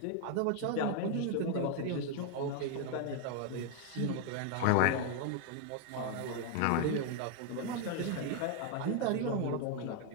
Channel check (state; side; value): different; both; correlation 0.01